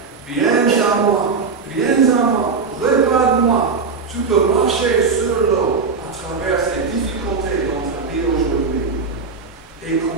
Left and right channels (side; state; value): left; quieter; 4.9 dB